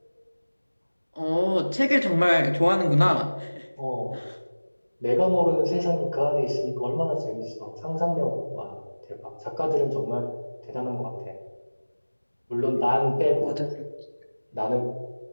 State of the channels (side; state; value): both; inverted; correlation -1.00